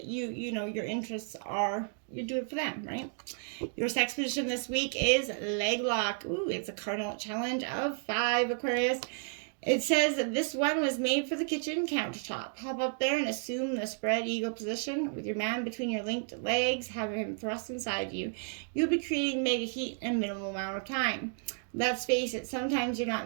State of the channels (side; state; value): left; silent; 56 dB below the other